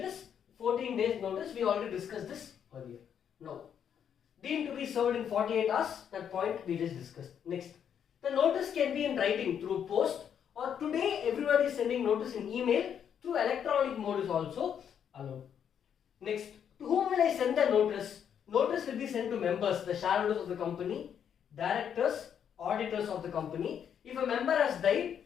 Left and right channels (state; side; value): quieter; right; 8.4 dB